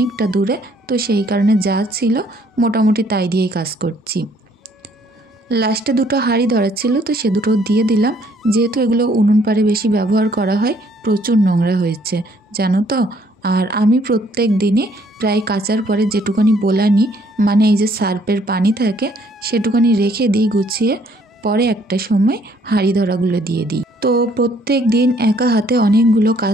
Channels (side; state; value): both; normal; correlation 0.64